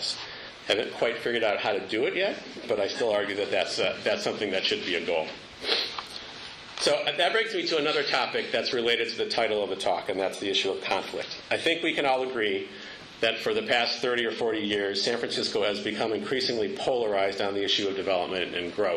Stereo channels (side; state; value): both; identical; correlation 1.00